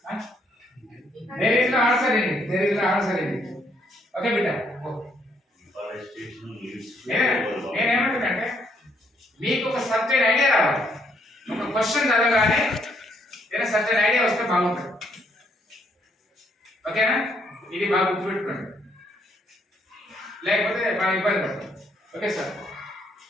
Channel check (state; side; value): normal; both; correlation 0.71